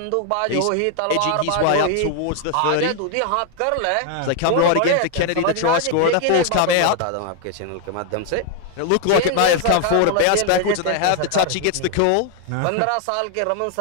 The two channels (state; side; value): different; both; correlation 0.01